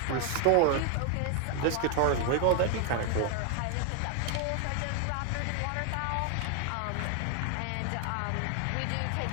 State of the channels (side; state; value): both; different; correlation 0.00